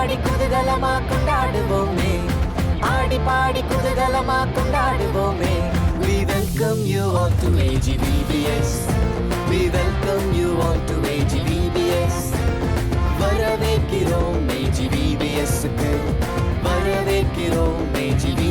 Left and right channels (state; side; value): identical; both; correlation 1.00